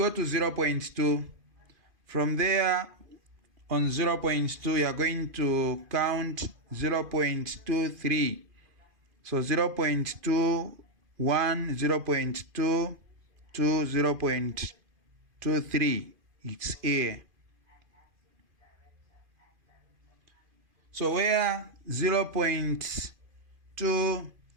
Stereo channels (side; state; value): left; late; 2.5 ms